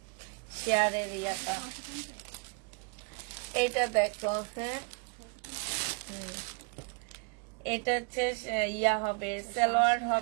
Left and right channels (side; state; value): left; quieter; 34.7 dB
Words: শেয়ারের ইয়াটা। এটা দেখো, হ্যাঁ, এটা হচ্ছে ইয়া হবে, সালোয়ার